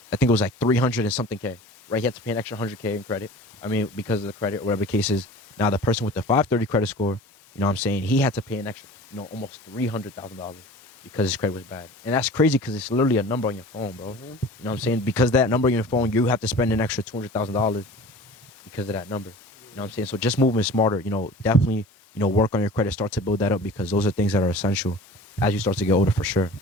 I think it was like 300 and something K, right? He had to pay an extra 100K in credit. I mean, because of the credit or whatever the case is. Now the person with the 530 credit score, you know what I'm saying, he had to pay an extra, almost $300,000 because his credit was bad. And that's crazy because it's literally a number on your phone, bro. Mm-hmm. You know what I'm saying? Because that number on your phone, you have to spend an extra $200,000 because of that number. You know what I'm saying? So just moving smarter, definitely, work on your credit, start to build that up because those are things that are essential as you start to get older for sure.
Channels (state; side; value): normal; both; correlation 0.41